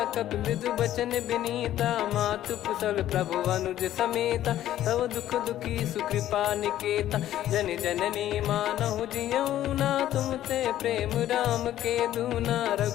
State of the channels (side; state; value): right; quieter; 12.7 dB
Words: कपि मृदु बचन बिनीता, मातु कुशल प्रभु अनुज समेता। तव दुख दुखी सुकृपा निकेता, जन जननी मानहु जियऊ ना। तुम ते प्रेम राम के दूना,